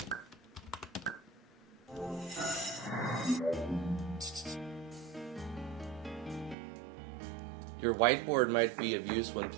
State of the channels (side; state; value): left; drops out; at 6.6 s